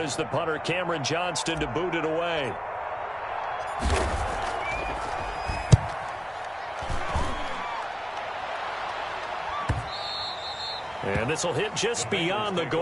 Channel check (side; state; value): both; identical; correlation 1.00